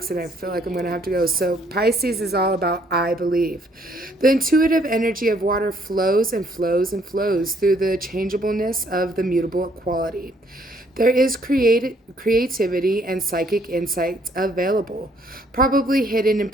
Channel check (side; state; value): both; normal; correlation 0.66